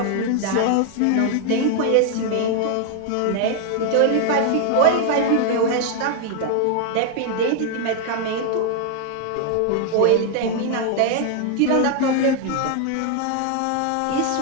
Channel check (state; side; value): different; both; correlation 0.00